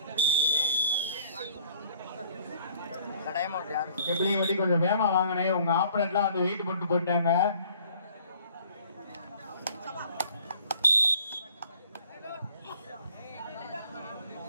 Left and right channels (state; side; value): inverted; both; correlation -0.57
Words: கெப்பிலிங்கப்பட்டி கொஞ்சம் வேகமா வாங்கினே, உங்க ஆப்பரேட்லாம் வந்து வெயிட் போட்டு போயிட்டாங்க.